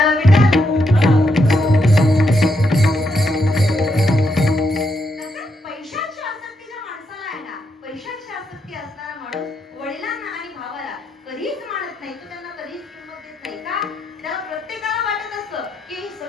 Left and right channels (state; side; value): normal; both; correlation 0.80